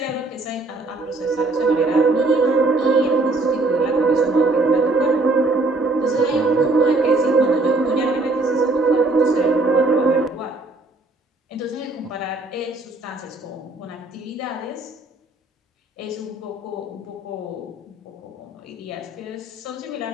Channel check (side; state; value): left; quieter; 3.1 dB